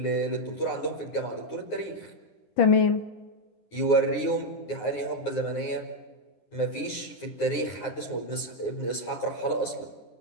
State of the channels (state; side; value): late; right; 9.5 ms